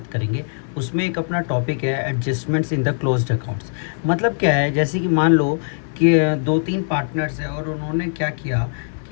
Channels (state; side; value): silent; right; digital silence